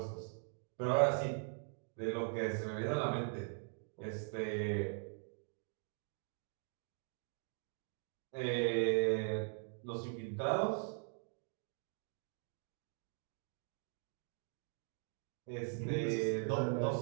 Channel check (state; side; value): silent; left; 50 dB below the other